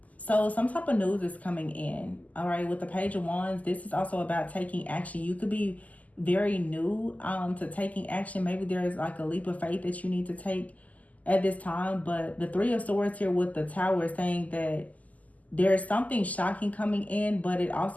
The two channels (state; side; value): late; right; 0.076 ms